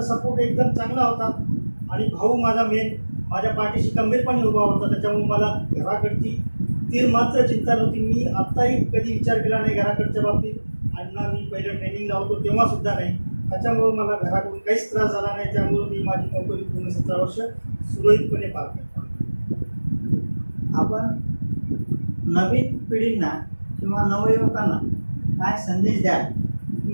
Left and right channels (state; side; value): inverted; both; correlation -1.00